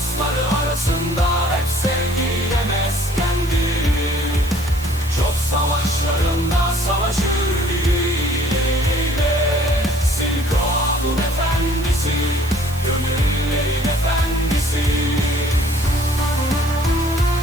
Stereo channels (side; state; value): right; noise; hiss, 17 dB below the sound